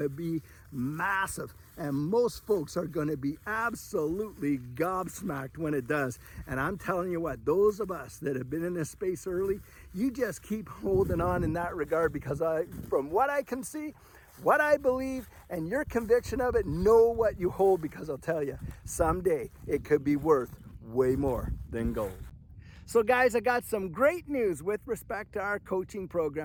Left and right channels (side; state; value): both; identical; correlation 1.00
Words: be massive, and most folks are going to be absolutely gobsmacked when it does. And I'm telling you what, those of us that have been in this space early, you just keep holding on in that regard, because from what I can see, what I believe, and your conviction of it, know what you hold, because I'll tell you, someday it could be worth way more than gold. So guys, I got some great news with respect to our coaching